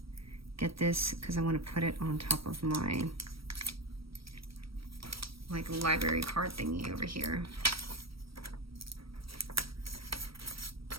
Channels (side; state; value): left; late; 0.75 ms